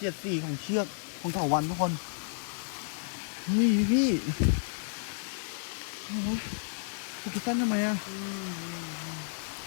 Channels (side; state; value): right; silent; digital silence